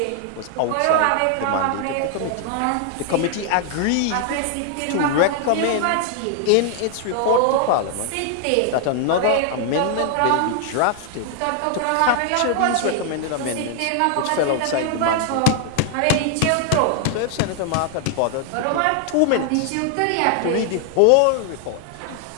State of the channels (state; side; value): different; both; correlation 0.00